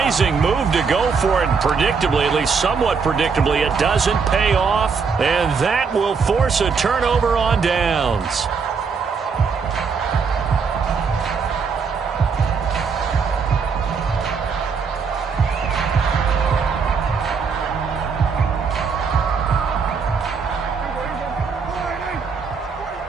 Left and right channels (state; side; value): quieter; left; 5.5 dB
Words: move to go for it, and predictably, at least somewhat predictably, it doesn't pay off, and that will force a turnover on downs.